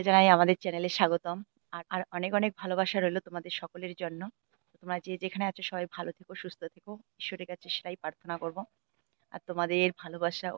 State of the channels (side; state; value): left; quieter; 37.4 dB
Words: জানাই আমাদের চ্যানেলে স্বাগতম। আর অনেক অনেক ভালোবাসা রইলো তোমাদের সকলের জন্য। তো তোমরা যে যেখানে আছো সবাই ভালো থেকো, সুস্থ থেকো, ঈশ্বরের কাছে সেটাই প্রার্থনা করব। আর তোমাদের ভালোবাসা